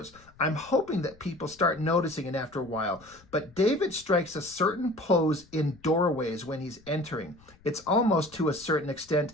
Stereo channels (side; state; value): left; noise; rumble, 27 dB below the sound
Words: I'm hoping that people start noticing it after a while, but David strikes a certain pose in doorways when he's entering. It's almost, to a certain extent,